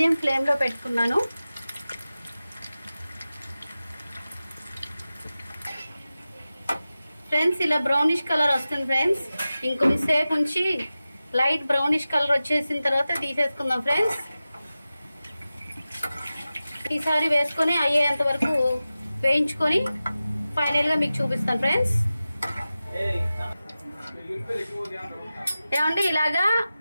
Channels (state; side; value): inverted; both; correlation -0.95